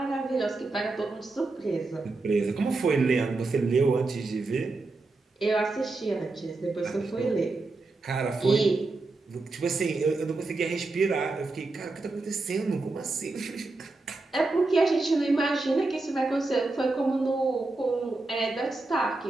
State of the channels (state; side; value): quieter; left; 3.4 dB